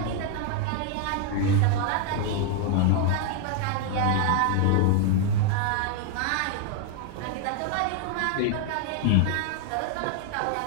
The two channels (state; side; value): different; both; correlation 0.01